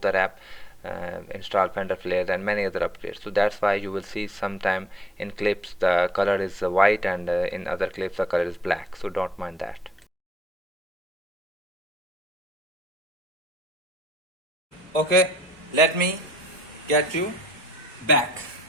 the wrap, install fender flares and many other upgrades. So that's why you will see sometime in clips the color is white, and in other clips the color is black, so don't mind that. Okay, let me get you back.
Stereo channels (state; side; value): normal; both; correlation 0.65